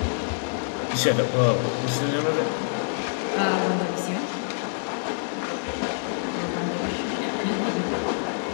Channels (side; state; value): right; silent; digital silence